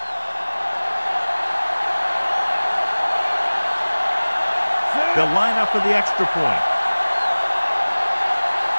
They'll line up for the extra point.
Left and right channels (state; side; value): inverted; both; correlation -1.00